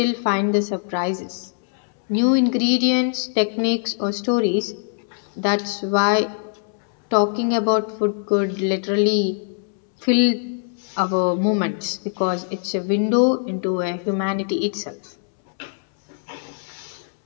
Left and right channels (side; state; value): right; silent; 64 dB below the other